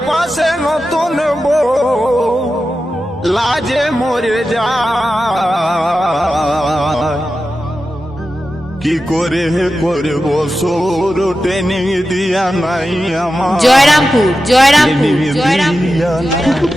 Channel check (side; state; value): both; normal; correlation 0.92